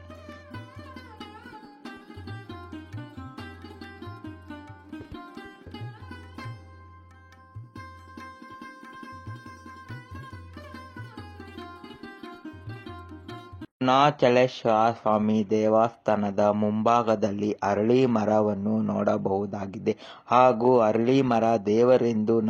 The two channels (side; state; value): both; identical; correlation 1.00